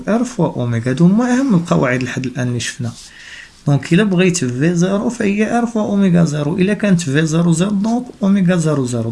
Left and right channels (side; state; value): both; identical; correlation 1.00